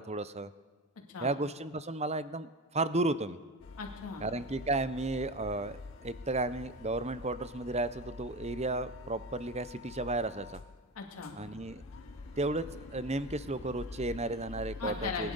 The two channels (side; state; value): both; normal; correlation 0.26